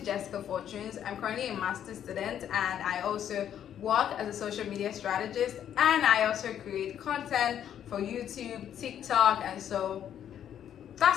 Fortunes. I'm currently a master's student and I also work as a social media strategist, and I also create content for YouTube, TikTok, and so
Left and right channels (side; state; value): right; quieter; 9.8 dB